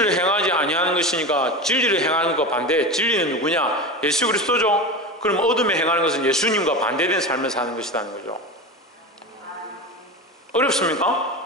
행하지 아니하는 것이니까 진리를 행하는 것 반대, 진리는 누구냐? 예수 그리스도죠. 그럼 어둠에 행하는 것은 예수님과 반대된 삶을 사는 것이라는 거죠.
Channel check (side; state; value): both; normal; correlation 0.25